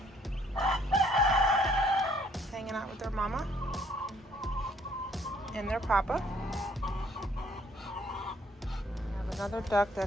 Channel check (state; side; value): normal; both; correlation 0.63